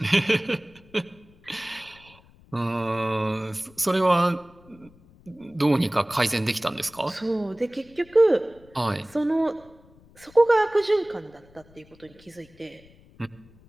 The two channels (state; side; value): noise; left; rumble, 27 dB below the sound